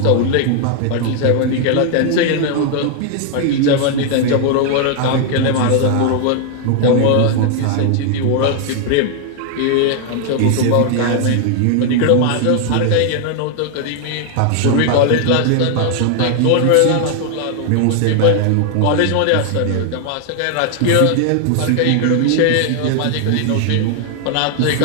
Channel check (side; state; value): both; different; correlation 0.00